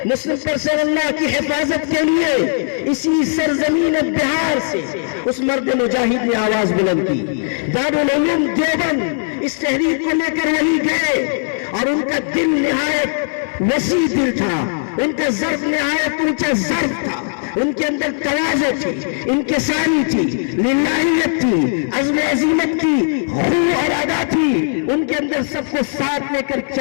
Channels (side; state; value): right; silent; 66 dB below the other